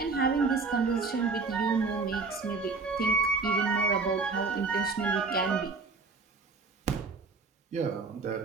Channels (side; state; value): left; quieter; 4.3 dB